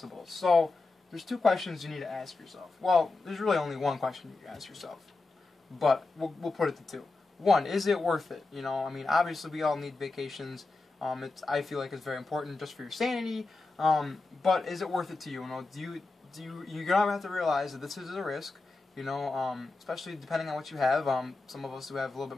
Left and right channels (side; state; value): right; quieter; 3.5 dB